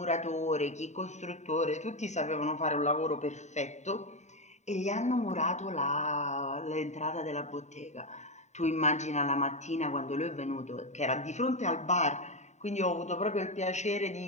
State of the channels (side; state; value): right; late; 0.34 ms